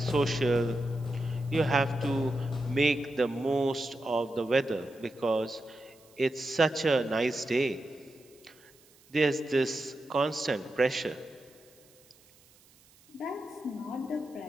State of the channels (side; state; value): right; noise; hiss, 28 dB below the sound